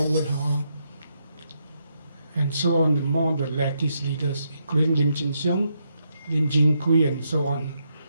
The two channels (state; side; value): inverted; both; correlation -0.80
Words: and so on, more the leftist leaders, including Lim Chin Siong, Lim Jin Kui, and so on.